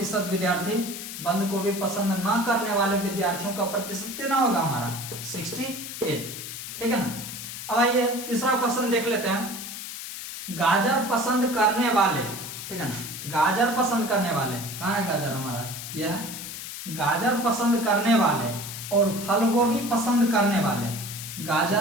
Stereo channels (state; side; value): noise; left; hiss, 9 dB below the sound